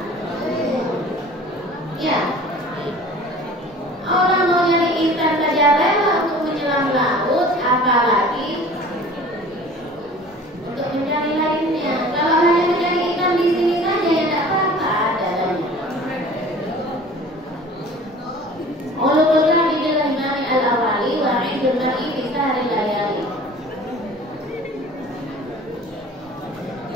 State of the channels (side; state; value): both; normal; correlation 0.44